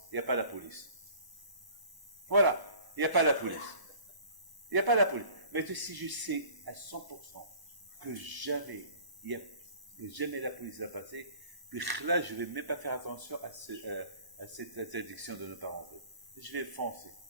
Il n'y a pas la police. Voilà. Il n'y a pas la police. Il n'y a pas la police. Mais si je sais à 100% que jamais la police va passer, puis là, je vais même pas faire attention à cette interdiction de ne pas rentrer. Je vais foncer.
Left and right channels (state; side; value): late; left; 1.0 ms